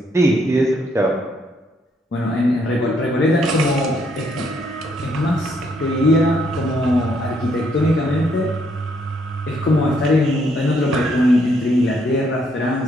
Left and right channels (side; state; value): both; normal; correlation 0.71